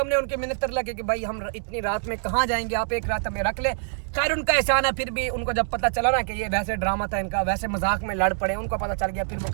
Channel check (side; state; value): left; silent; digital silence